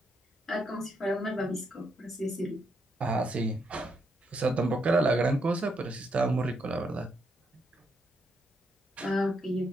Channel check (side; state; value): both; normal; correlation 0.78